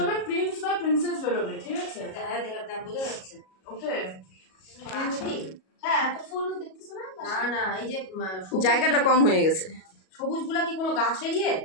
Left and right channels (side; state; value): right; late; 37 ms